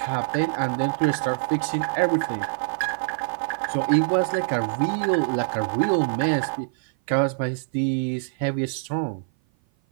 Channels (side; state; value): left; silent; 56 dB below the other